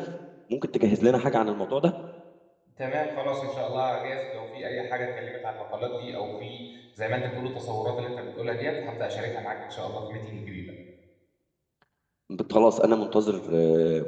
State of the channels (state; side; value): identical; both; correlation 1.00